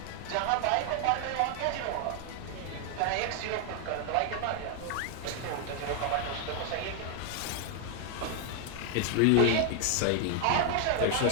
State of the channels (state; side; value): different; both; correlation 0.00